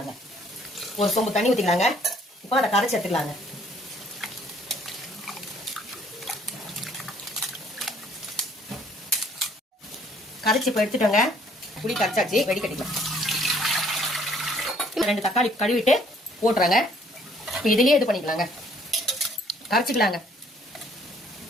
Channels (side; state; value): both; normal; correlation 0.61